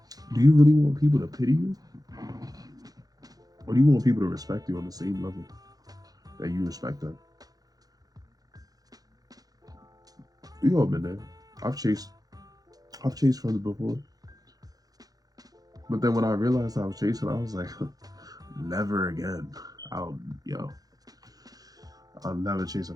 Do you really want people to pity you? Or do you want people to respect you on the same level that you respect them? We all been there. I've chased friends before. But then when I realized I was chasing, I was like, never again. I'll never chase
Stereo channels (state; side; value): late; left; 0.18 ms